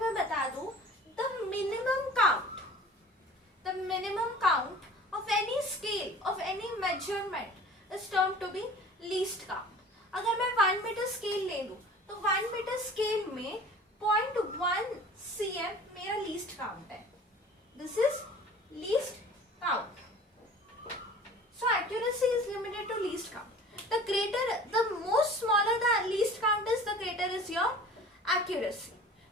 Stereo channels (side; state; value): both; normal; correlation 0.44